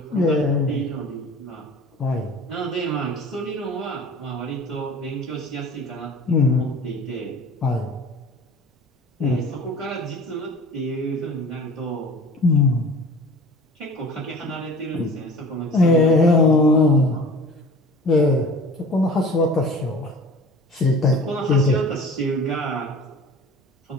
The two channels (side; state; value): both; normal; correlation 0.42